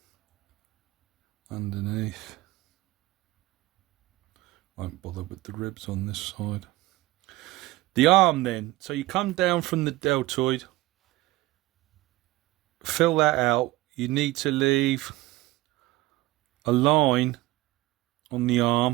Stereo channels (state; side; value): quieter; left; 18.3 dB